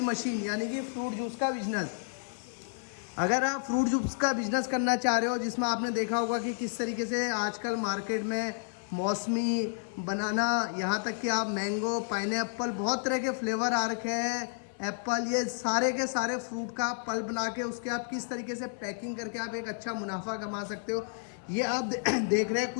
यानी कि फ्रूट जूस का बिजनेस। अगर आप फ्रूट जूस का बिजनेस करना चाह रहे हो, जिसमें आपने देखा होगा कि किस तरीके से आजकल मार्केट में मौसमी, बनाना, यहाँ तक कि आप मैंगो, पाइनएप्पल, बहुत तरह के फ्लेवर आ रखे हैं, एप्पल, ये सारे के सारे फ्रूट का आप पल्प बना के उसके आप किस तरीके से पैकिंग करके आप एक अच्छा मुनाफा कमा सकते हो। ये आप देख रहे हैं,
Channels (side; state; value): right; silent; 56 dB below the other